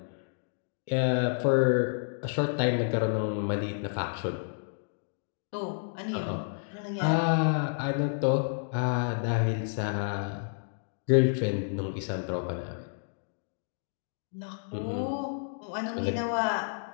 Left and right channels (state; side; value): silent; right; digital silence